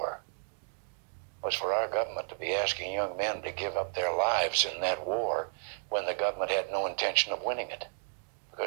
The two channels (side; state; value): left; silent; digital silence